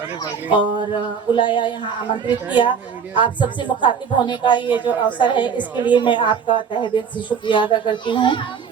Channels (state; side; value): quieter; left; 6.7 dB